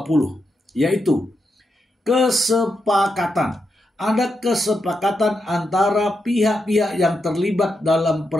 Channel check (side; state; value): both; normal; correlation 0.85